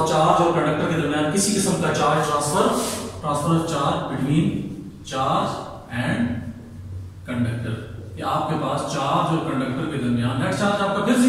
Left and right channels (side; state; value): both; identical; correlation 1.00